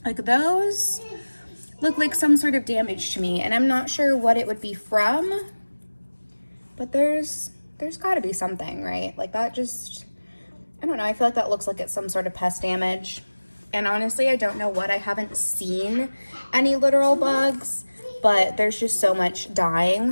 Like, those look like some sort of damage to me, and I'm not sure what it would be from. But there's got to be something, right? Like, that just, I don't know. I feel like that looks like it's some sort of pest damage. And honestly, I don't know what. I haven't seen any literal bugs, but there's just so much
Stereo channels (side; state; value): both; inverted; correlation -1.00